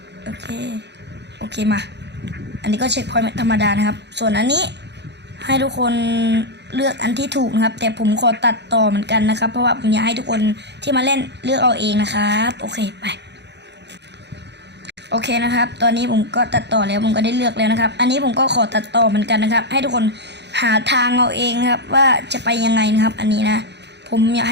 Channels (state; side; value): late; left; 0.50 ms